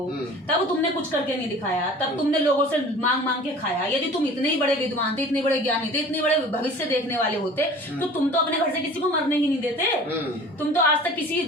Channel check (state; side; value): normal; both; correlation 0.44